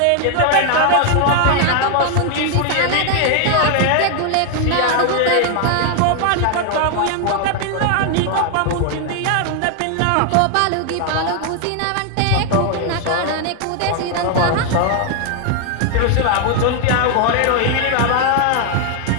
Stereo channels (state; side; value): different; both; correlation 0.00